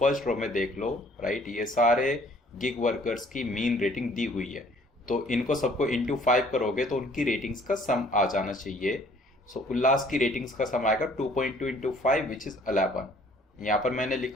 रो में देख लो, राइट, ये सारे गिग वर्कर्स की मीन रेटिंग दी हुई है। तो इनको सबको इंटू 5 करोगे तो उनकी रेटिंग्स का सम आ जाना चाहिए। सो उल्लास की रेटिंग्स का सम आएगा 2.2 इंटू 5 विच इज 11। यहाँ पर मैंने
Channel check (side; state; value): both; normal; correlation 0.58